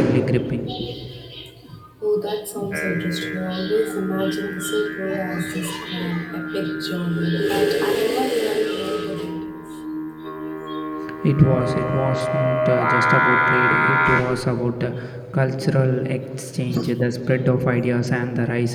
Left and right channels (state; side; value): identical; both; correlation 1.00